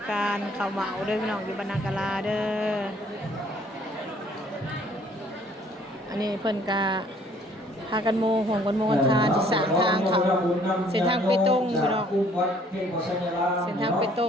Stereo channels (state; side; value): normal; both; correlation 0.60